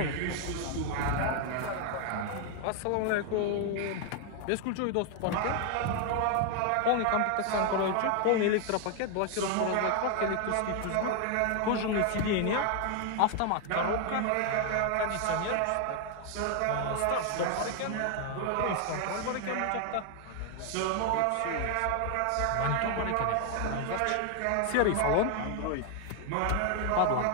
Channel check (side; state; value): both; different; correlation 0.00